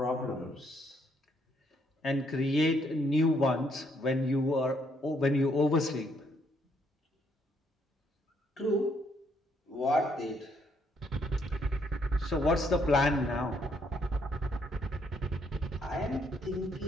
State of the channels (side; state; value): both; normal; correlation 0.71